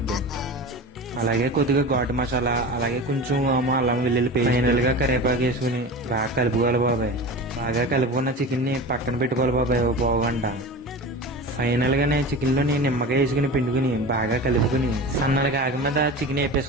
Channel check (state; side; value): normal; both; correlation 0.31